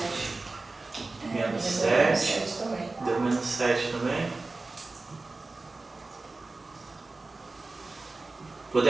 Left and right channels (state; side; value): quieter; left; 3.4 dB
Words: Menos Deu 7. também. Deu menos 7 também.